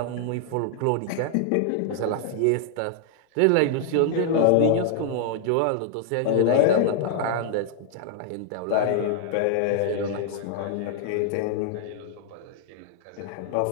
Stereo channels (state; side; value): different; both; correlation 0.00